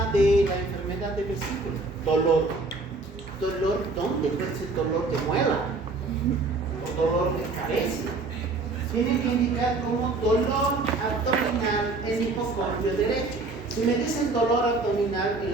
de la enfermedad de vesícula? Dolor. ¿Dolor dónde? Puede ser dolor de muela o dolor de cabeza. Tiene que indicar como dolor abdominal en hipocondrio derecho. Si me dicen dolor abdominal, el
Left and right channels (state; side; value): quieter; left; 3.5 dB